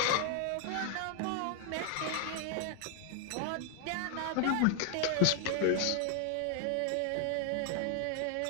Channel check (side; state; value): both; different; correlation 0.00